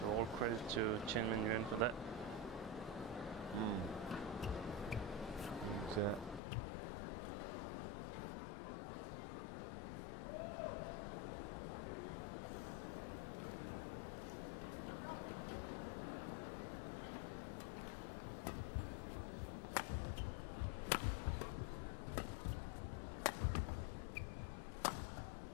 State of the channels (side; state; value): right; drops out; at 6.4 s